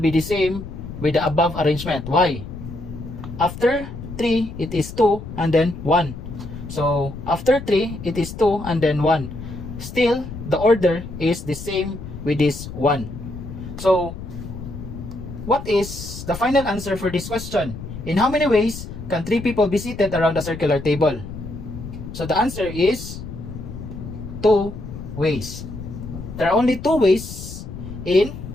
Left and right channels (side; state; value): left; noise; rumble, 10 dB below the sound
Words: the same with the above arrangement. Why? After 3, it is 2 and then 1. So, after 3, it is 2 and then 1. Still, the order is the same with this 1. So, what is the final answer for this question? In how many ways can 3 people be seated around a circular table? So, the answer is 2 ways. There are only 2 ways in